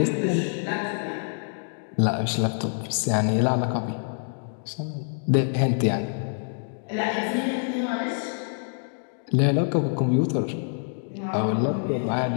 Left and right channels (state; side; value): silent; right; digital silence